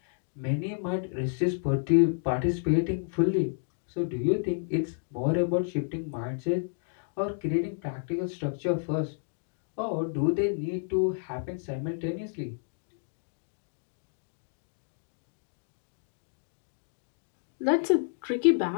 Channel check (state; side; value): silent; right; digital silence